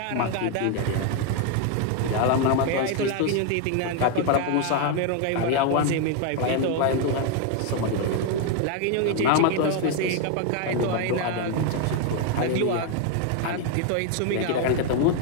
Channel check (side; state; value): both; different; correlation 0.01